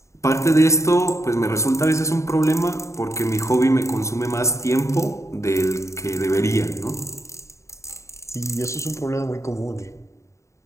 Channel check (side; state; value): right; late; 0.14 ms